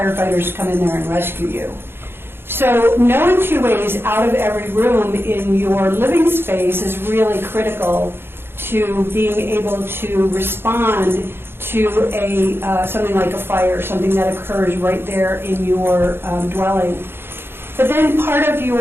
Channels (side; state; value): left; late; 0.11 ms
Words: to come in there and rescue you. So knowing 2 ways out of every room in your living space is really critical to being able to respond to something like a fire, something that occurs right there in your dwelling. But then part of